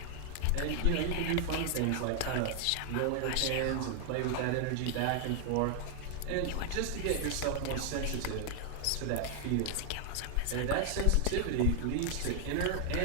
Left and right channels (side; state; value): both; different; correlation 0.00